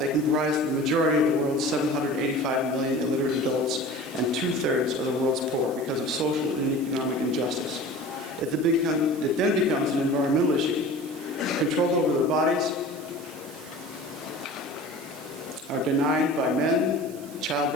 comprise the majority of the world's 785 million illiterate adults and 2/3 of the world's poor because of social and economic injustice. It then becomes an environmental issue. Control over their bodies are denied by men.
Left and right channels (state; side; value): noise; right; hiss, 20 dB below the sound